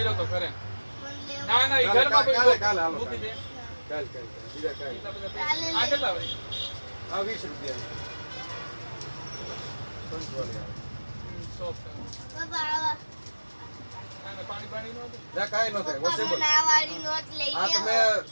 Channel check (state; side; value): inverted; both; correlation -1.00